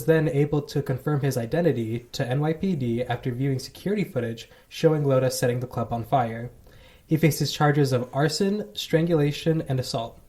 then able to confirm his identity to NYPD after viewing security footage showing Loda setting the club on fire. He faces charges of arson, strangulation, and assault.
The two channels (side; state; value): both; identical; correlation 1.00